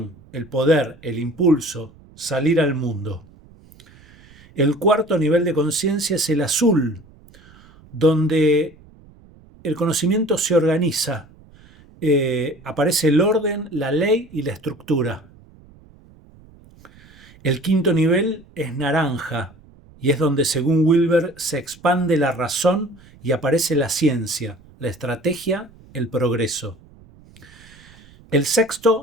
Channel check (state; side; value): noise; right; rumble, 25 dB below the sound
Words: el poder, el impulso, salir al mundo. El cuarto nivel de conciencia es el azul, donde el conocimiento se organiza, aparece el orden, la ley y la estructura. El quinto nivel es naranja y es donde, según Wilber, se expande la razón y aparece la ciencia, la estrategia, el progreso. El